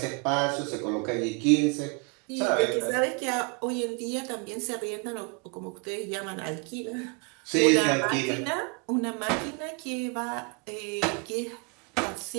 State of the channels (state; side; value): quieter; left; 34.3 dB